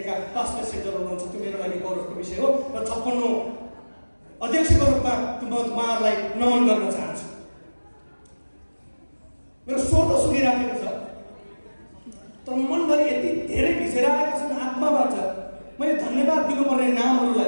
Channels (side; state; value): both; inverted; correlation -1.00